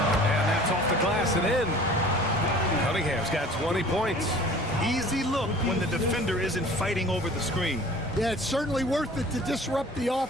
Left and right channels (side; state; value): both; normal; correlation 0.47